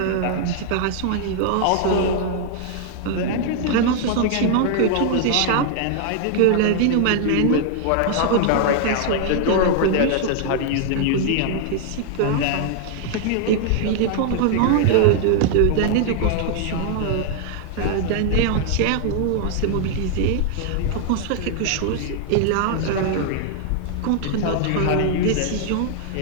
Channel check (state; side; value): different; both; correlation 0.00